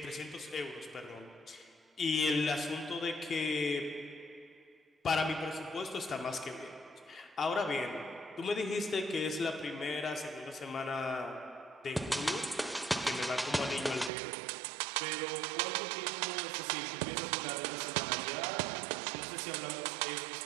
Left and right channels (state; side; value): drops out; left; at 14.1 s